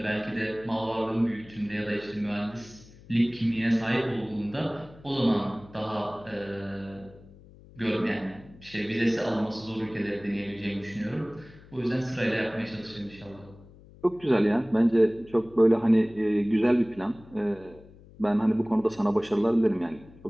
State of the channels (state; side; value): noise; left; hum, 22 dB below the sound